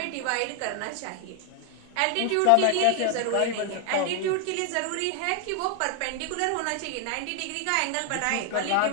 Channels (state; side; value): different; both; correlation 0.00